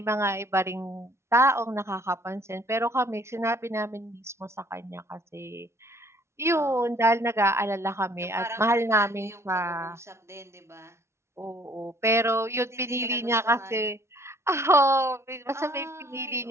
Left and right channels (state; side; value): late; left; 0.13 ms